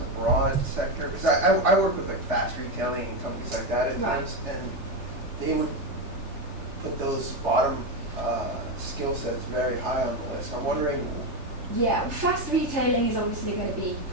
a broad sector? Because I work with like fast retailing and companies like that at times, and they would put those bottom skill sets very high on the list. I'm wondering. Yeah, fast retailing is obviously going to be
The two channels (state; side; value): late; left; 3.3 ms